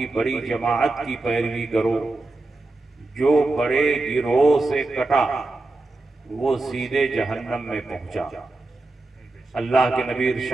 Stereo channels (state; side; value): quieter; left; 3.1 dB